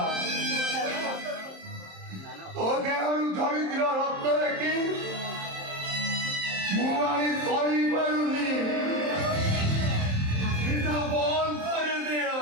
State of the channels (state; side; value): late; left; 27 ms